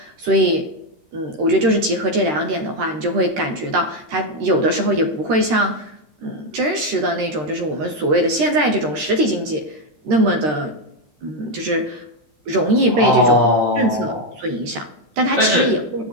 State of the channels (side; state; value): left; late; 13 ms